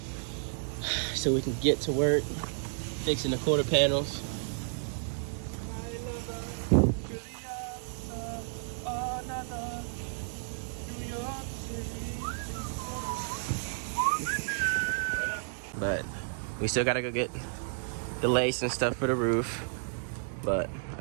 so we can get to work fixing the quarter panels. But we still gotta go get the lace and stuff for the roof. But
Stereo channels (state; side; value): silent; left; digital silence